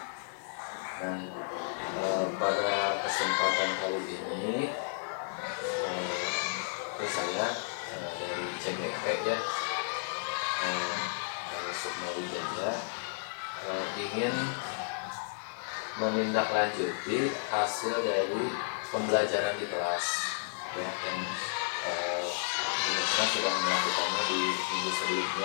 Nah, pada kesempatan kali ini, saya dari CGP ya, dari Sukma Wijaya, ingin menindaklanjuti hasil dari pembelajaran di kelas ya, yang sudah melakukannya di minggu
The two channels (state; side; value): silent; right; 56 dB below the other